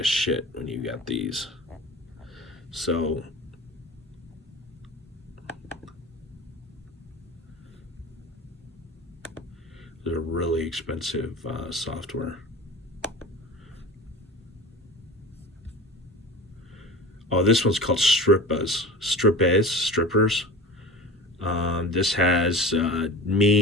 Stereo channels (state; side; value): normal; both; correlation 0.34